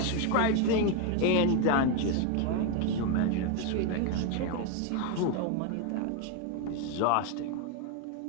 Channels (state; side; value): different; both; correlation 0.01